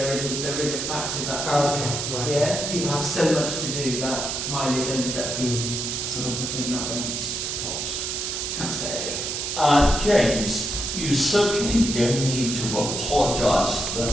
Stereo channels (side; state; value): right; noise; hiss, 3 dB below the sound